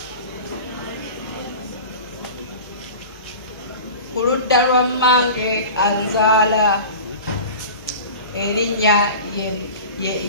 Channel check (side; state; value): both; inverted; correlation -0.36